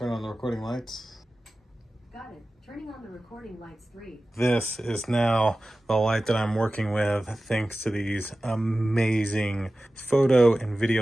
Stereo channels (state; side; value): normal; both; correlation 0.96